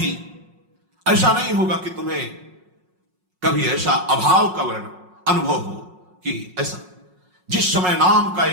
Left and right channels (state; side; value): late; left; 5.5 ms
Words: ऐसा नहीं होगा कि तुम्हें कभी ऐसा अभाव का वर्ण अनुभव हो कि ऐसा। जिस समय नाम का